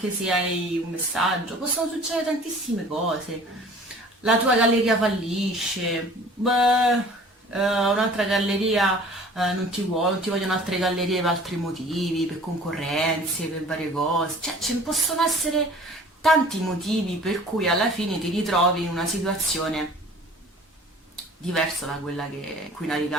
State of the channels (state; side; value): normal; both; correlation 0.47